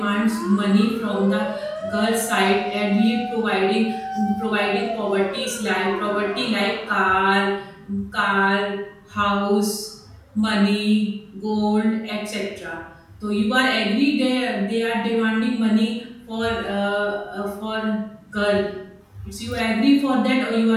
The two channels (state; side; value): identical; both; correlation 1.00